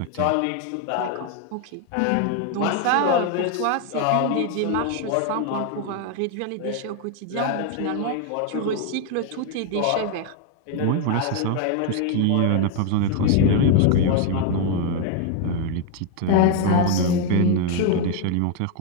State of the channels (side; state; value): both; different; correlation 0.01